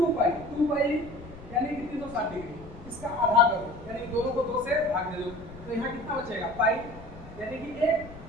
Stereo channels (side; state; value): left; noise; rumble, 17 dB below the sound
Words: पाई यानी कि 360 डिग्री, इसका आधा करो, यानी दोनों को 2 से भाग दे दो, तो यहाँ कितना बचेगा, पाई यानी कि 1